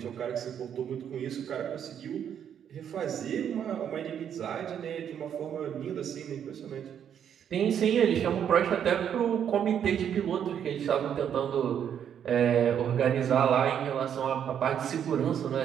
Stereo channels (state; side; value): quieter; left; 8.9 dB